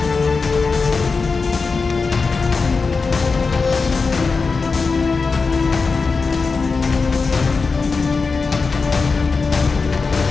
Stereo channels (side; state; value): right; quieter; 4.5 dB